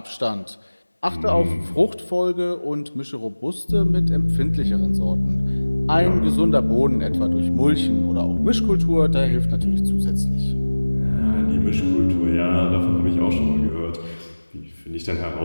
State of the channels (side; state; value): both; inverted; correlation -1.00